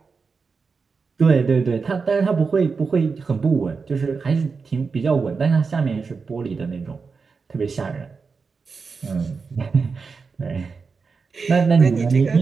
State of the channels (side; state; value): left; quieter; 4.9 dB